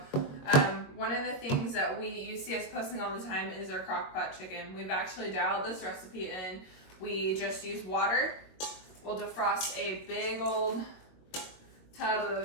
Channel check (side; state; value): right; late; 21 ms